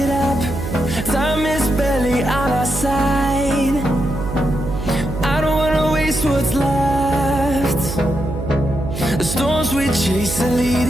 up, time is barely on our side. I don't wanna waste what's left. The storms we chase are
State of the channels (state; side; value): noise; right; hum, 6 dB below the sound